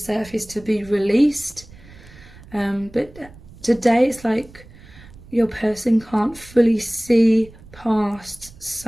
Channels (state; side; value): noise; right; rumble, 21 dB below the sound